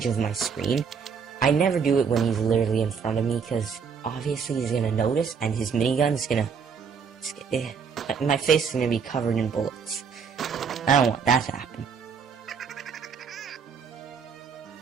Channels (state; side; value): quieter; left; 6.3 dB